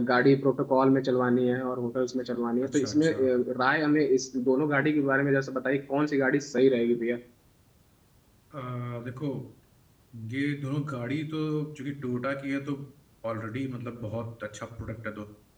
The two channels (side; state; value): both; identical; correlation 1.00